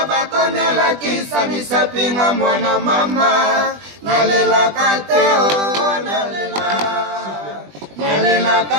bakonela kisa misapinga mwana mama nalela kateo nalela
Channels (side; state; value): left; late; 20 ms